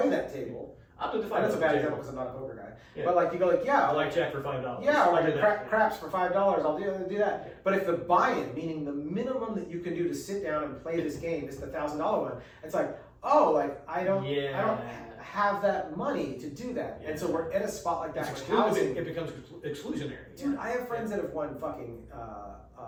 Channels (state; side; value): identical; both; correlation 1.00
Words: that table. I'll do the $5. That's a bad example because I'm not a poker guy. Yeah. But like you go like, yeah, I like Jack for $5. yeah, or I'll like do that. craps for $5. I'll do that. Yeah. But if the buy-in, meaning the minimum that you can do to sit down and play this game, is the $1,000 one, it's like, oh, like I don't have that money to do that, and so we're at a spot like that. It becomes exclusionary. Dude, I have friends that have won fucking